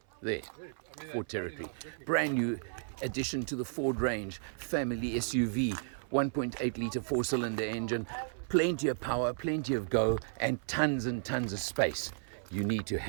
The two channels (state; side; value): silent; left; 55 dB below the other